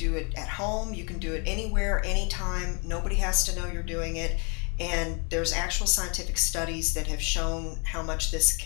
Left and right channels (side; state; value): right; quieter; 34.6 dB